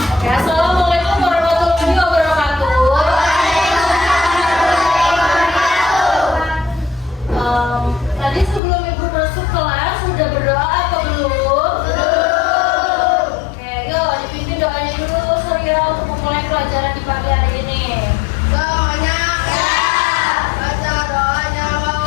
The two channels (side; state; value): right; drops out; at 8.6 s